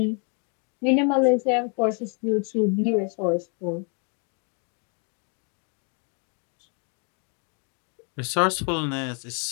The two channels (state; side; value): quieter; right; 38.0 dB